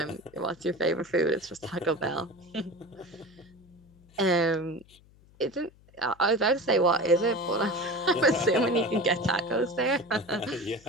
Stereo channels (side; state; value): left; noise; hum, 27 dB below the sound